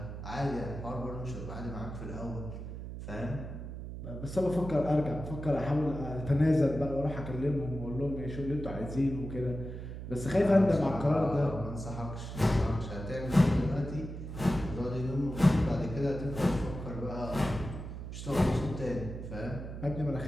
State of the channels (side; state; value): right; noise; hum, 8 dB below the sound